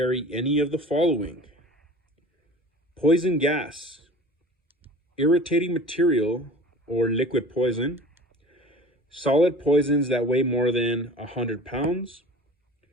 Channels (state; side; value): normal; both; correlation 0.41